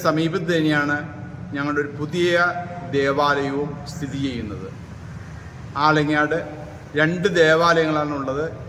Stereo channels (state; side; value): identical; both; correlation 1.00